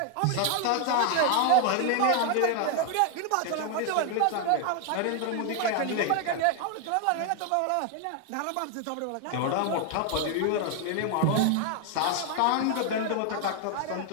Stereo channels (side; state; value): both; different; correlation 0.00